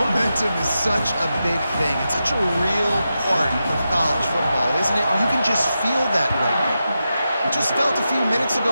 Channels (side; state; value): both; inverted; correlation -0.89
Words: is such a big thing. It's such a real part of college football, isn't it? You can just feel that right now. It just felt a few minutes